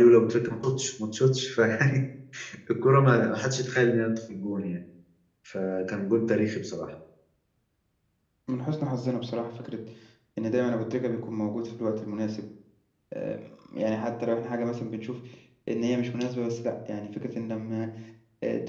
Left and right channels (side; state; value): both; identical; correlation 1.00